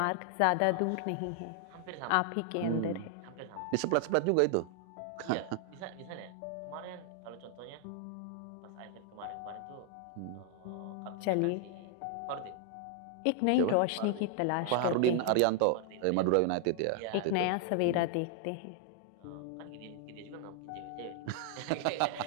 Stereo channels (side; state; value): both; different; correlation 0.00